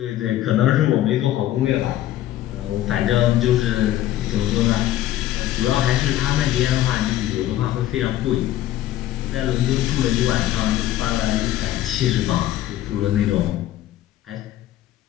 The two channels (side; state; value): right; quieter; 13.4 dB